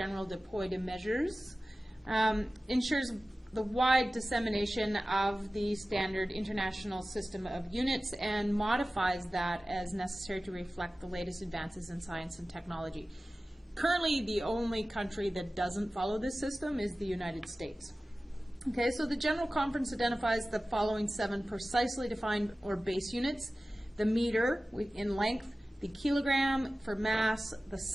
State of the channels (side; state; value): both; normal; correlation 0.96